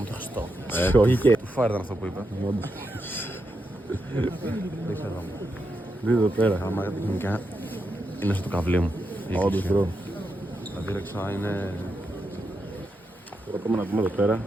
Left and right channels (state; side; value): normal; both; correlation 0.85